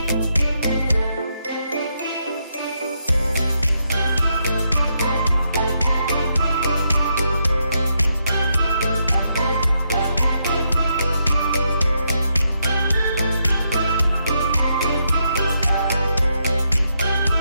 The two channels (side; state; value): both; inverted; correlation -0.80